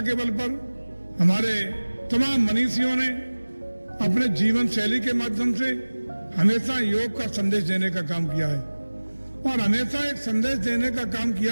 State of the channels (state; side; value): inverted; both; correlation -1.00